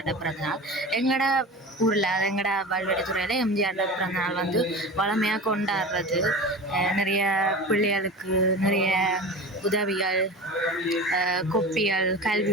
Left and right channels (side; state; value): both; normal; correlation 0.32